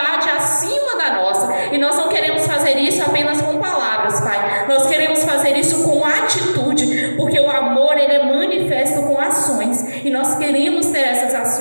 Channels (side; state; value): both; inverted; correlation -1.00